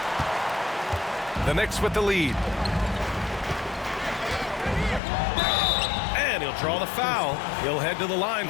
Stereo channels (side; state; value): right; drops out; at 5.0 s